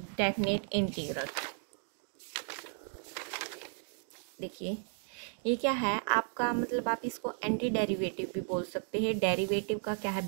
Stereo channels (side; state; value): left; silent; 55 dB below the other